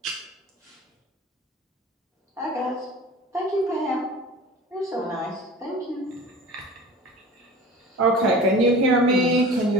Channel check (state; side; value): normal; both; correlation 0.39